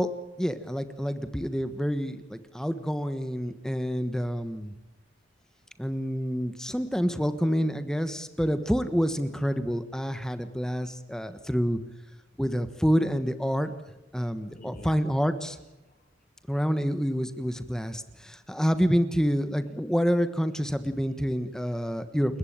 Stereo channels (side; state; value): both; normal; correlation 0.96